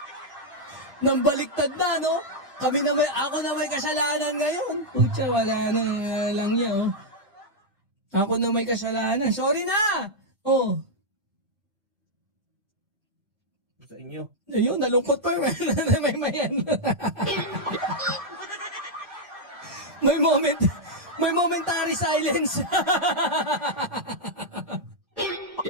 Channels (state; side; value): normal; both; correlation -0.03